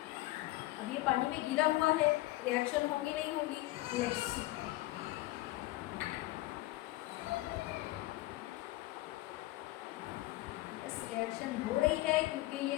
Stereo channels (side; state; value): right; quieter; 18.3 dB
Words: अब ये पानी में गीला हुआ है, रिएक्शन होगी नहीं होगी, लेट्स सी। बस रिएक्शन हो रही है क्योंकि ये